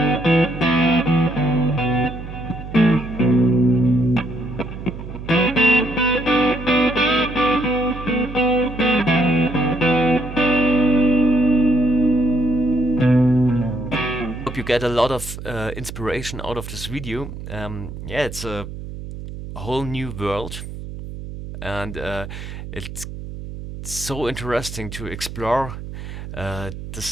Hope you get a lot of inspiration out of this video. Yeah, it's a whole new world, and it's so interesting to explore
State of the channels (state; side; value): noise; right; hum, 10 dB below the sound